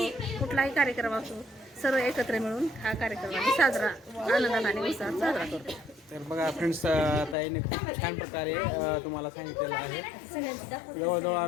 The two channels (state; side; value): drops out; right; at 7.4 s